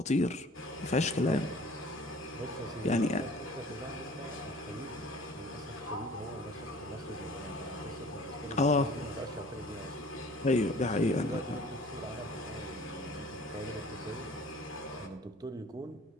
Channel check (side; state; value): both; normal; correlation 0.49